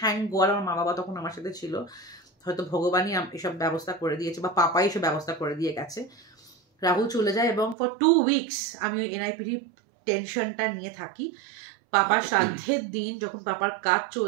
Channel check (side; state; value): left; drops out; at 7.8 s